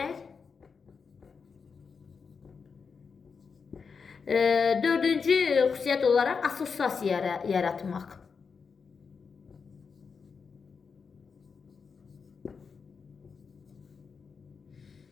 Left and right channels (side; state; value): right; quieter; 5.5 dB